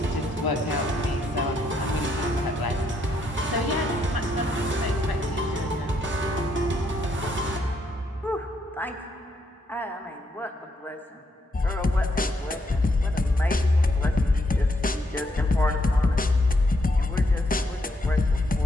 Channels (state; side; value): normal; both; correlation 0.76